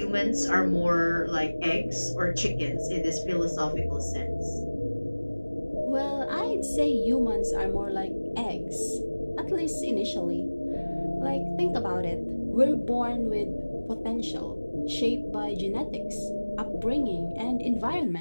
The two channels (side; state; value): both; inverted; correlation -1.00